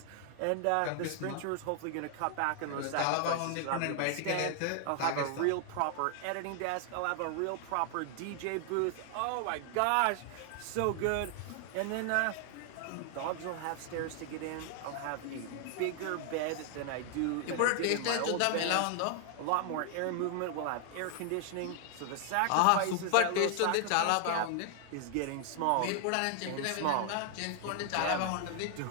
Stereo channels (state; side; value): different; both; correlation 0.00